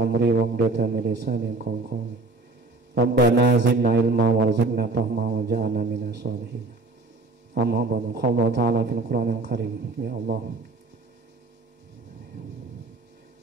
wa hludatan min lisani yafqahu qawli. Rabbana zidna ilma warzuqna fahma waj'alna minas sholihin. Amma ba'du. Qala ta'ala fil Qur'anil Karim. Ya Allah,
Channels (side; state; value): left; quieter; 3.2 dB